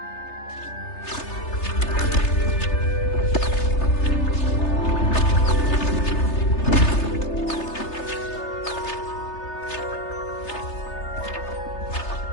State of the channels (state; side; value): late; right; 3.3 ms